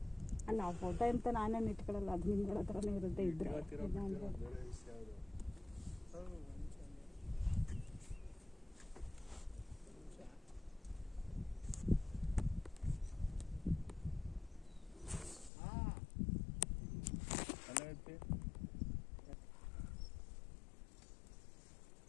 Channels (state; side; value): drops out; right; at 15.5 s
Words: ಅಲ್ಲ, ಆ ಫೋಟೋ ಅಂತ ನಾನೇನು ಇಟ್ಕೊಳ್ಳಲ್ಲ, ಅದು ನಿಮ್ಗಳ ಹತ್ರನೇ ಇರುತ್ತೆ. ಇದ್ರೆ